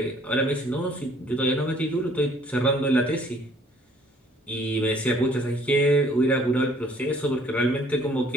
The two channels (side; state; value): both; normal; correlation 0.59